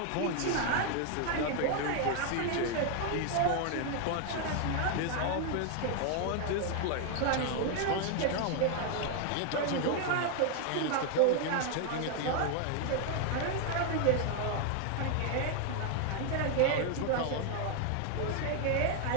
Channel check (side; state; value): both; different; correlation 0.01